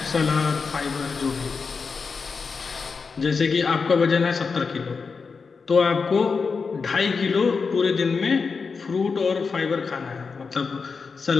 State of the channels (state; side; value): quieter; right; 5.0 dB